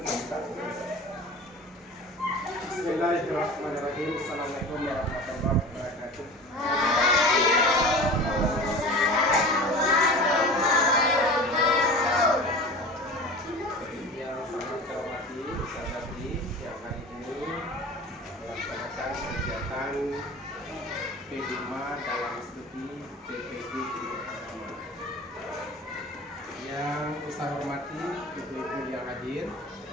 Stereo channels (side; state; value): both; normal; correlation 0.36